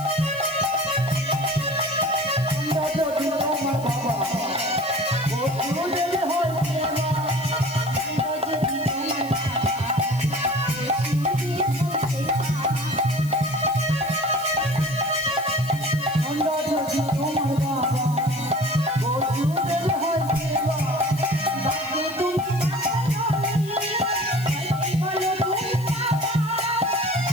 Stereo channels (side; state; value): left; noise; hiss, 18 dB below the sound